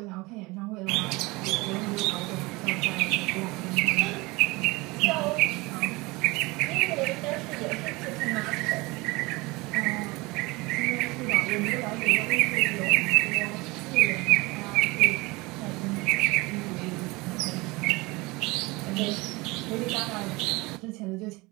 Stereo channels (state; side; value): quieter; left; 23.5 dB